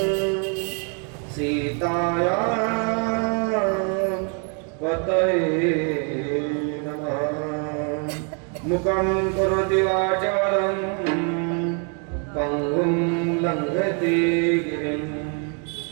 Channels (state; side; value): quieter; left; 39.8 dB